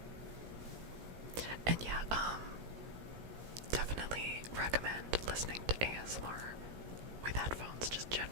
And yeah, definitely recommend listening to ASMR with headphones, just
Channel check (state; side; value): late; left; 17 ms